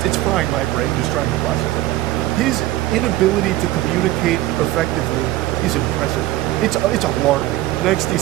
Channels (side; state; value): left; quieter; 16.1 dB